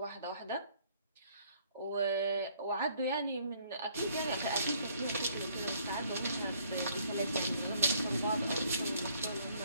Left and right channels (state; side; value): inverted; both; correlation -0.63